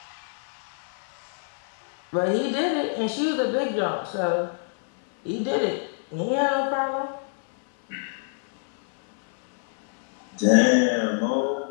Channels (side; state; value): right; silent; 61 dB below the other